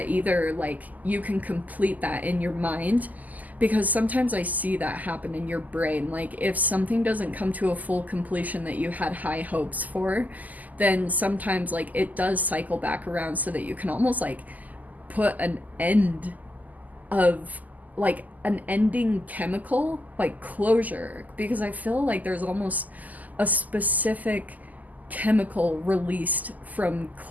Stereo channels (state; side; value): late; left; 0.080 ms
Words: either like you can complete that in your mind, because sometimes I see that happen in your brain. Like, if something doesn't come to a full completion that you had high hopes for, then sometimes like it does cycle back around, so that you can almost like put an end of, like an ending chemical, like closure, because I feel like there's almost a specific chemical released from